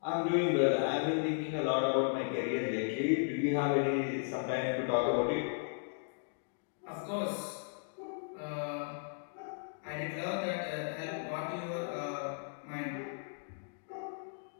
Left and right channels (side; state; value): right; silent; digital silence